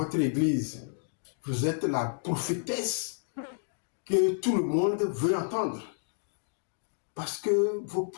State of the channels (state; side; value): silent; right; digital silence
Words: église, vous êtes la prophétesse que tout le monde veut entendre. parce que vos